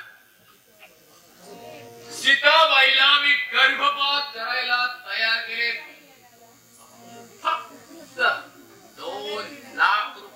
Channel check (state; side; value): identical; both; correlation 1.00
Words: सीताबाईला मी गर्भपात करायला तयार केले. फक्त 2 लाख